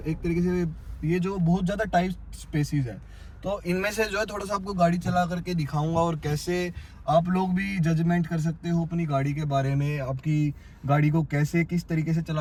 एक तरीके से ये जो बहुत ज़्यादा टाइट स्पेसिस है, तो इनमें से जो है थोड़ा सा आपको गाड़ी चला करके दिखाऊंगा और कैसे आप लोग भी जजमेंट कर सकते हो अपनी गाड़ी के बारे में, आपकी गाड़ी को कैसे किस तरीके से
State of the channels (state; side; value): identical; both; correlation 1.00